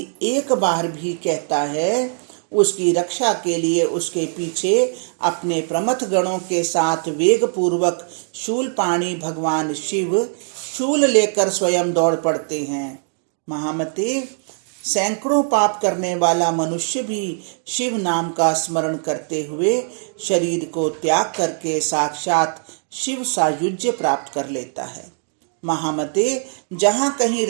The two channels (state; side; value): silent; left; 59 dB below the other